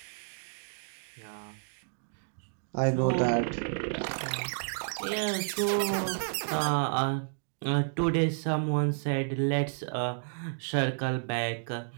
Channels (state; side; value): silent; left; digital silence